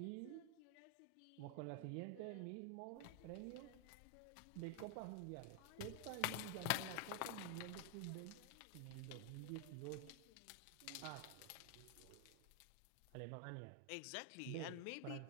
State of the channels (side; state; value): both; different; correlation 0.00